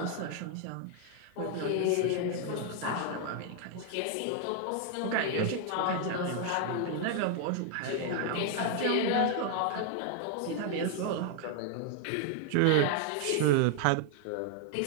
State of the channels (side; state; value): both; different; correlation 0.00